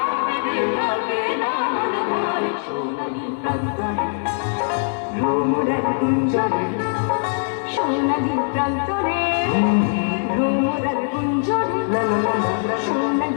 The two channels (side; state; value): right; silent; digital silence